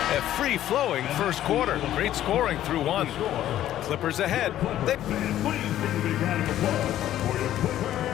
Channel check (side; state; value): right; quieter; 12.5 dB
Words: A free-flowing first quarter. Great scoring through 1. Clippers ahead.